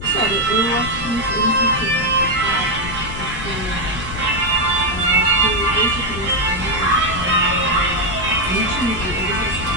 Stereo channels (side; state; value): left; noise; rumble, 10 dB below the sound